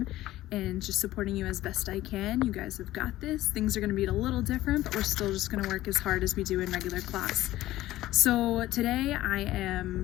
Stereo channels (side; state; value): right; quieter; 15.5 dB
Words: and just supporting you as best I can. You guys have got this. Things are going to be a little different, but we're still just going to work as hard as we do in regular class. So today I